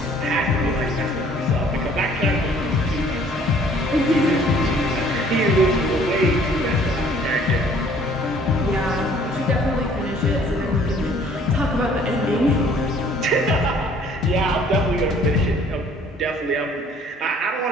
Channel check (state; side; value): normal; both; correlation 0.56